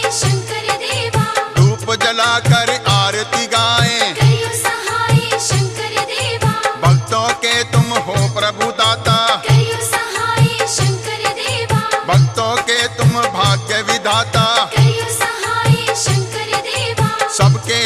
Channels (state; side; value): identical; both; correlation 1.00